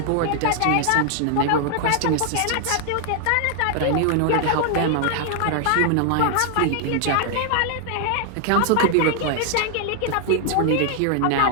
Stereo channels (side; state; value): both; different; correlation 0.00